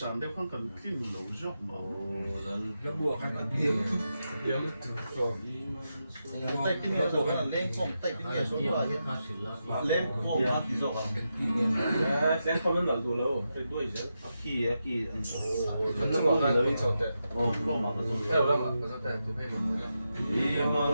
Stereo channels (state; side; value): inverted; both; correlation -0.87